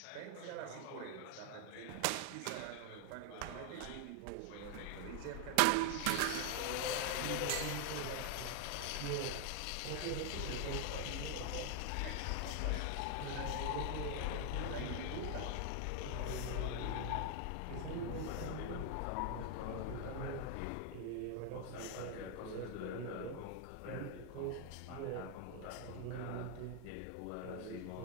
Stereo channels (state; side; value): different; both; correlation 0.00